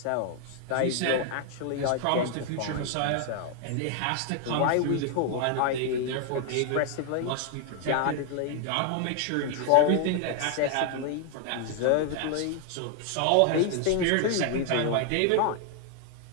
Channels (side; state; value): both; different; correlation 0.00